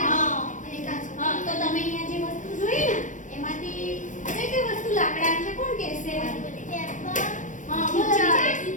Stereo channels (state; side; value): late; right; 0.37 ms